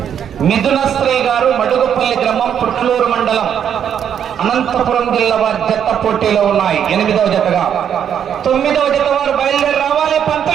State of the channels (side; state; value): left; quieter; 8.7 dB